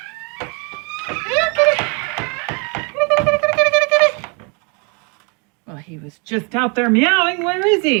Well, he was just out there meowing. Where is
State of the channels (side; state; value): left; quieter; 33.7 dB